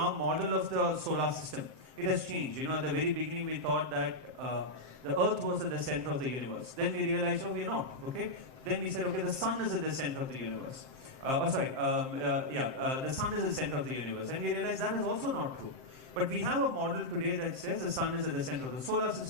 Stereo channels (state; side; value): late; left; 7.7 ms